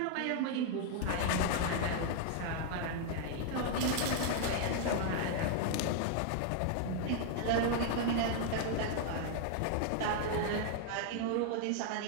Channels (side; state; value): both; different; correlation -0.01